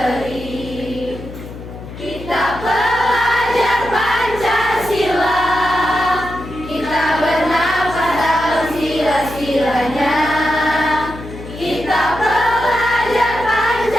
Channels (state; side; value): noise; left; hum, 13 dB below the sound